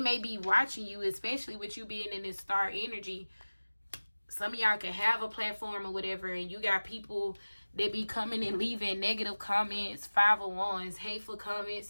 be watching you, especially with you being in this star energy. Some of y'all can have a platform or whatever, and you got people that be coming and leaving negative comments, 5 of Wands, hateful comments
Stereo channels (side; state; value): both; inverted; correlation -1.00